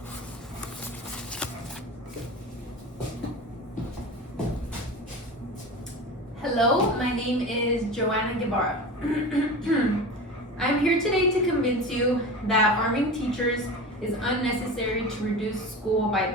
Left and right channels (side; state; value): both; normal; correlation 0.31